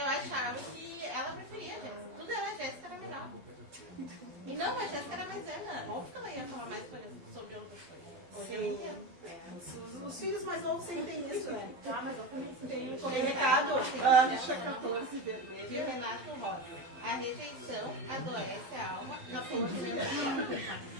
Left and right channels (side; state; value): left; late; 12 ms